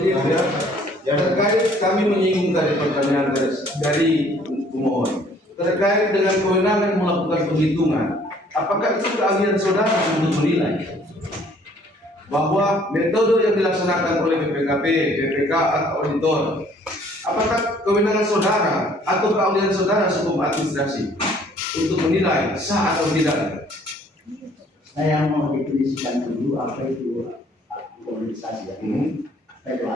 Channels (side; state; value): both; normal; correlation 0.59